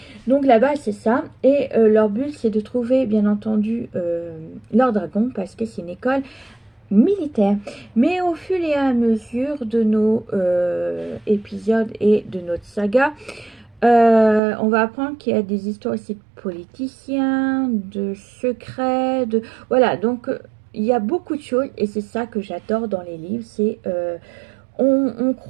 Donc là-bas, c'est ça. Et leur but, c'est de trouver, bien entendu, leur dragon, parce que c'est une école militaire. Mais au fur et à mesure de nos épisodes et de notre saga, on va apprendre qu'il y a des histoires aussi de politiciens, de secrets, de... Voilà, donc il y a beaucoup de choses et c'est ça que j'adore dans les livres, c'est... on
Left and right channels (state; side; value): drops out; left; at 14.4 s